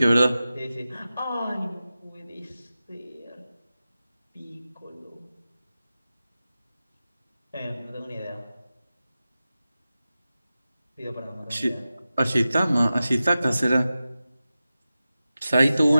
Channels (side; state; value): both; inverted; correlation -0.94